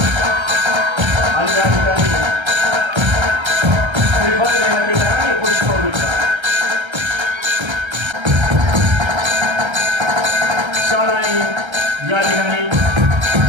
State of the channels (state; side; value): late; left; 1.3 ms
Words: आणि या ठिकाणी श्रीफळ देण्यात येणार आणि पुष्पवृक्ष. शाळांनी या ठिकाणी